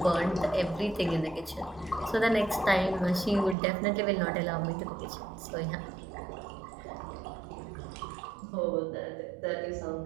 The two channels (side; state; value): left; drops out; at 3.6 s